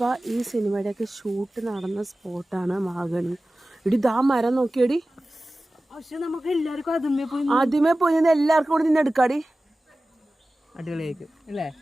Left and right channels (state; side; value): normal; both; correlation 0.96